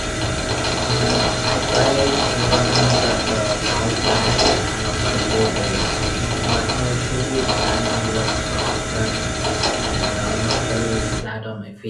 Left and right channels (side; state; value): both; identical; correlation 1.00